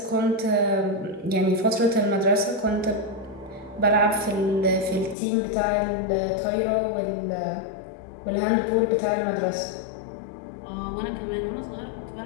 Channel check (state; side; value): drops out; right; at 5.2 s